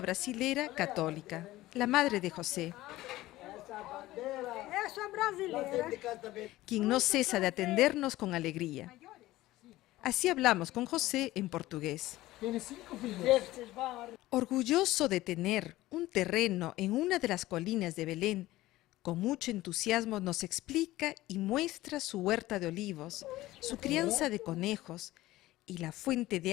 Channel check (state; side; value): quieter; right; 16.9 dB